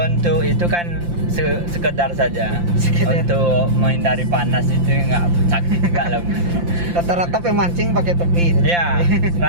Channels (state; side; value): late; left; 5.8 ms